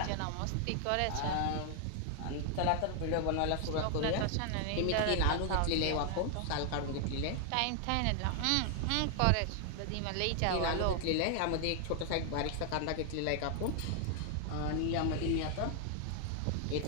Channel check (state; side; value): different; both; correlation 0.00